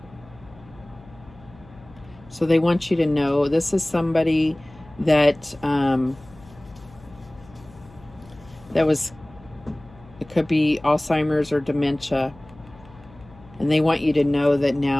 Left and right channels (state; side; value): noise; left; hum, 23 dB below the sound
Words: So they want you to know this is somebody that that was, it could be Alzheimer's or dementia, and they want you to know that